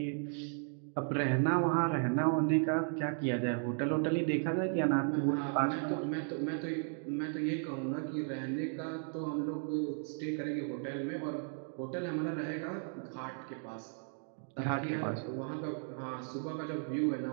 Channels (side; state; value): left; silent; 54 dB below the other